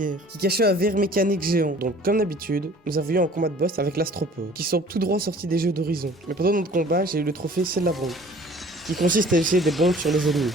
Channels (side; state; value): both; normal; correlation 0.50